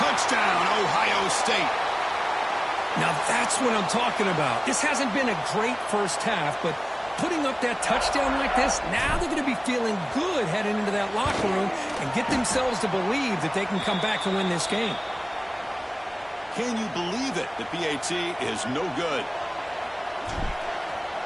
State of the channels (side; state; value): both; identical; correlation 1.00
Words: Ohio State. Now that's what I'm talking about. This hasn't been a great first half, but putting up that touchdown like this, now they're going to be feeling good heading into that locker room and get themselves to believe that they can come back and win this game. Can you believe it? The PAT is no good.